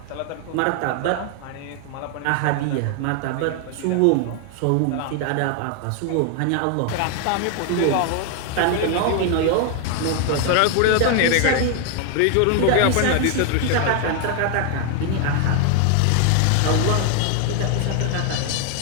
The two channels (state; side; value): different; both; correlation 0.00